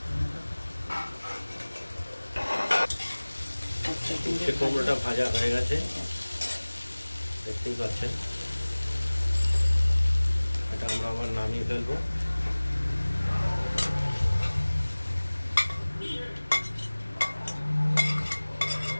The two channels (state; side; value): inverted; both; correlation -1.00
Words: উচ্ছে কুমড়োটা ভাজা হয়ে গেছে, দেখতেই পাচ্ছেন। এটা আমরা আবার নামিয়ে ফেলবো।